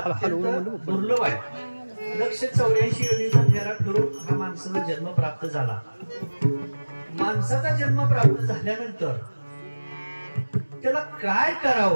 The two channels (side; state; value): both; inverted; correlation -1.00